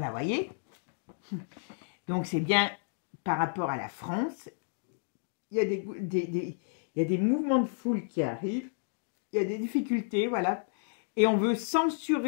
voyez, donc c'est bien par rapport à la France, il y a il y a des mouvements de foule qui arrivent, il y a des difficultés, voilà, et on veut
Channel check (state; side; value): silent; right; digital silence